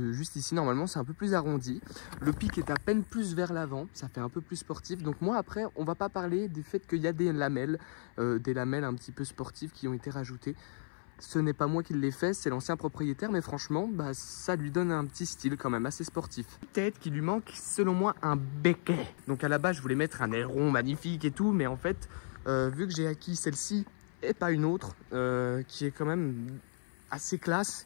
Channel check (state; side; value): silent; right; 55 dB below the other